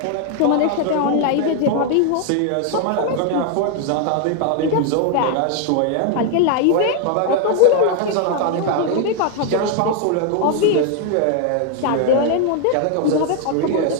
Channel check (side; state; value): both; different; correlation 0.00